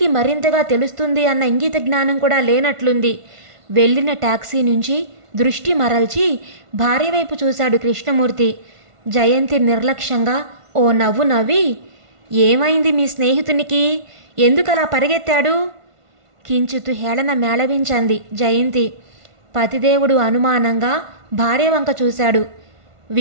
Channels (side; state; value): left; late; 1.5 ms